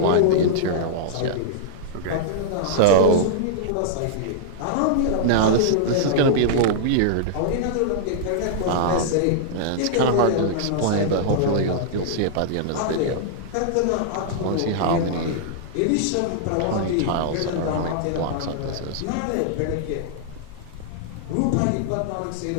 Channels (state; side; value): different; both; correlation -0.02